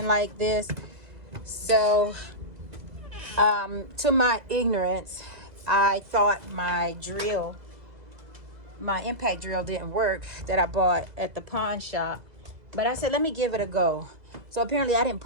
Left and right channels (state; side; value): late; left; 2.0 ms